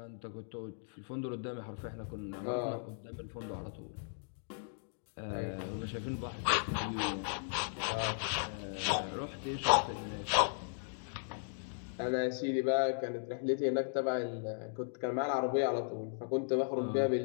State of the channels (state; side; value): silent; right; digital silence